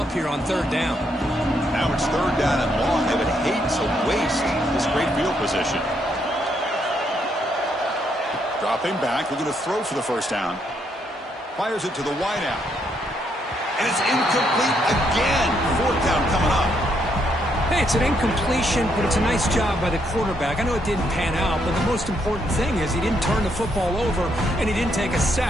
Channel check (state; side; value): normal; both; correlation 0.75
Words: here on 3rd down. Now it's 3rd down and long. They would hate to waste this great field position. Dropping back, looking to throw for the first down. Fires it to the wideout. And it's incomplete again. 4th down coming up. Hey, it's an incompletion, but it's a nice job by the quarterback. I know it didn't pan out, but the most important thing is he didn't turn the football over and he didn't take a